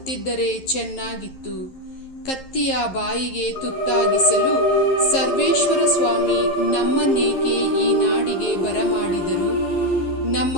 ಚೆನ್ನಾಗಿತ್ತು. ಕತ್ತಿಯ ಬಾಯಿಗೆ ತುತ್ತಾಗಿಸಲು ಸರ್ವೇಶ್ವರ ಸ್ವಾಮಿ ನಮ್ಮನ್ನೇಕೆ ಈ ನಾಡಿಗೆ ಬರಮಾಡಿದರು? ನಮ್ಮ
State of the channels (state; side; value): late; right; 11 ms